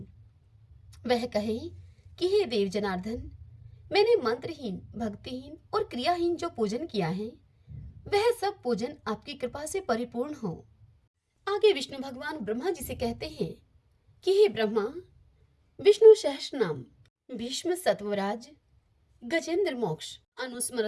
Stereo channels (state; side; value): identical; both; correlation 1.00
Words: वह कहे कि हे देव जनार्दन, मैंने मंत्रहीन, भक्तिहीन और क्रियाहीन जो पूजन किया है, वह सब पूजन आपकी कृपा से परिपूर्ण हो। आगे विष्णु भगवान ब्रह्मा जी से कहते हैं कि हे ब्रह्मा, विष्णु सहस्त्र नाम, भीष्म सत्वराज, गजेंद्र मोक्ष,